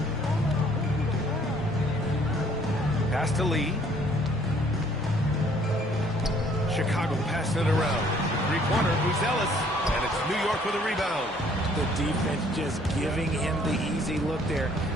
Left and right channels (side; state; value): both; normal; correlation 0.60